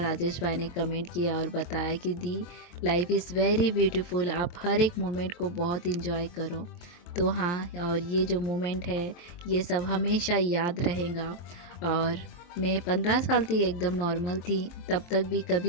भाई ने कमेंट किया और बताया कि दी लाइफ इज़ वेरी ब्यूटीफुल, आप हर एक मोमेंट को बहुत इंजॉय करो। तो हाँ, और ये जो मोमेंट है ये सब हमेशा याद रहेगा। और मैं 15 साल थी, एकदम नॉर्मल थी, तब तक भी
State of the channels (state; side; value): late; right; 23 ms